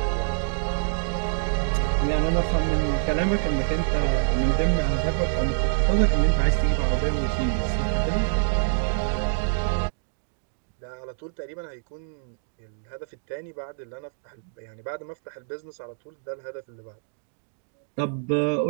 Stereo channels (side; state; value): left; silent; digital silence